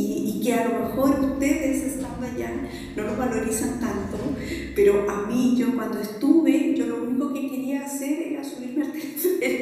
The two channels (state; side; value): identical; both; correlation 1.00